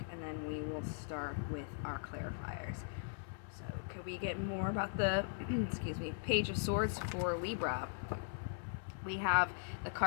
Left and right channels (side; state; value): right; silent; 51 dB below the other